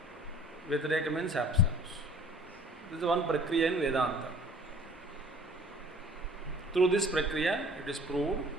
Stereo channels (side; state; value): both; normal; correlation 0.50